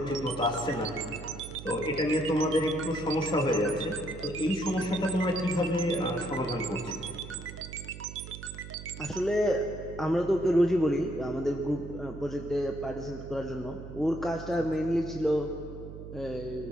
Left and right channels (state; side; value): noise; right; hum, 12 dB below the sound